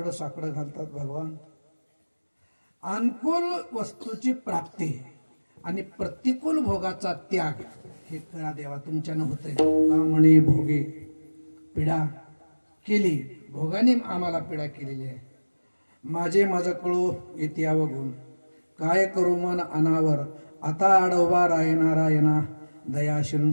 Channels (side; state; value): both; inverted; correlation -1.00